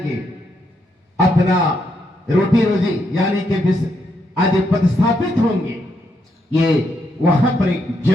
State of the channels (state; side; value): normal; both; correlation 0.78